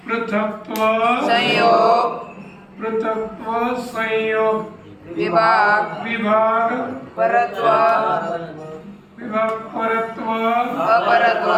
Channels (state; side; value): identical; both; correlation 1.00